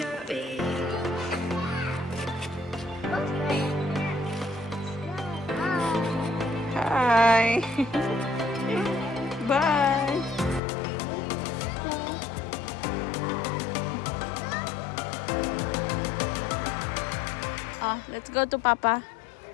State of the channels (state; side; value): drops out; right; at 10.6 s